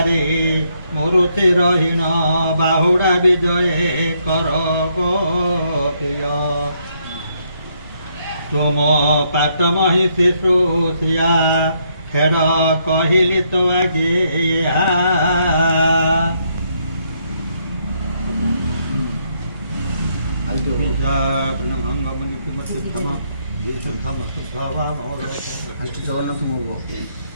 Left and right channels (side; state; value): both; inverted; correlation -0.74